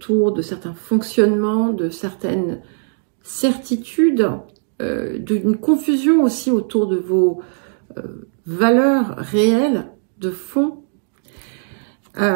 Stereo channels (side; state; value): left; silent; digital silence